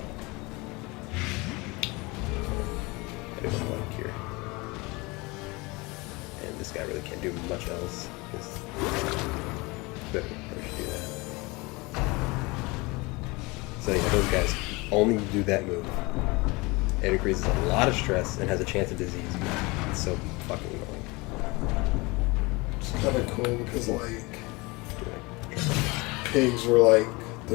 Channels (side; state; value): right; quieter; 24.9 dB